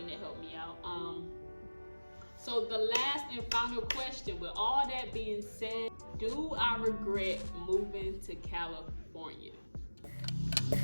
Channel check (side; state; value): both; inverted; correlation -1.00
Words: that helped me out. So the last and final question, with all that being said, do I regret moving to California?